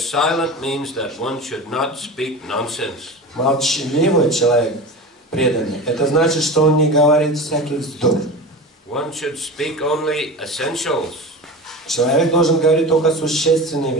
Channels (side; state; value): both; normal; correlation 0.30